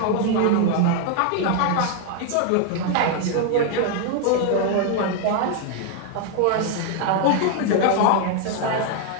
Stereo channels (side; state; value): both; different; correlation 0.00